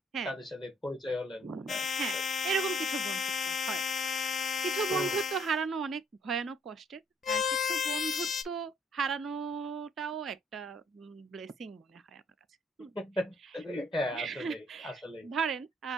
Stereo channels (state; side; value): normal; both; correlation 0.62